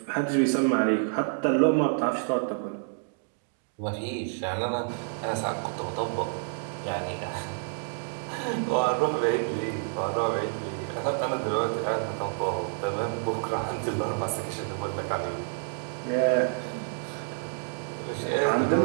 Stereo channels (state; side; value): silent; left; 59 dB below the other